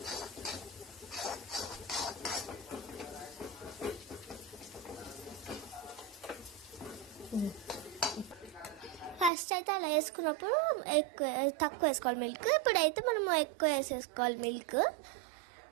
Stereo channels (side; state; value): left; drops out; at 9.3 s